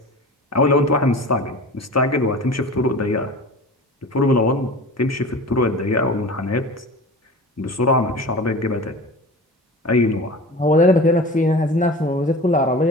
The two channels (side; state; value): both; normal; correlation 0.36